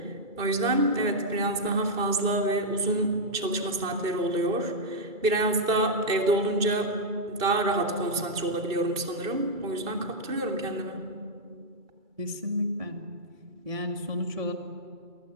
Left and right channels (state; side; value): late; left; 2.3 ms